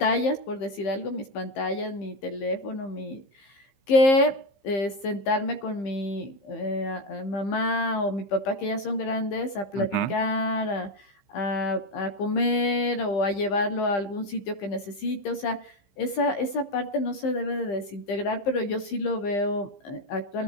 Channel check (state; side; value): late; right; 15 ms